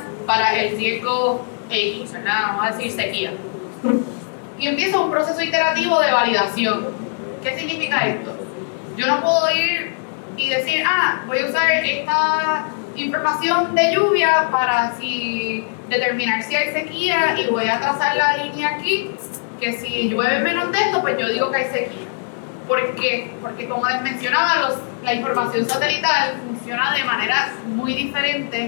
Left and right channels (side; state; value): right; silent; digital silence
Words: para el riesgo X, ¿verdad? Vamos a decir sequía. Y empieza un proceso iterativo de validación. ¿Qué significa esto? Yo no puedo ir y decir, voy a usar esta información de lluvia para determinar si hay sequía y voy a trazar la línea aquí, que si llueve menos de esto, pues yo digo que hay sequía. ¿Por qué? Porque como les mencionaba, la información satelital funciona de manera muy